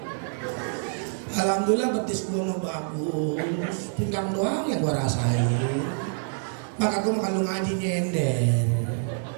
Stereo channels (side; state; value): left; silent; 61 dB below the other